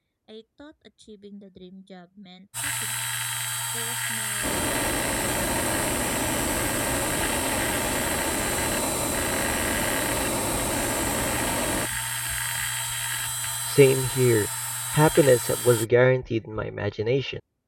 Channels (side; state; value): both; identical; correlation 1.00